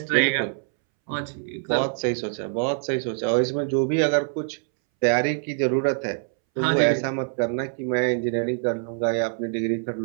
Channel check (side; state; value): left; silent; 62 dB below the other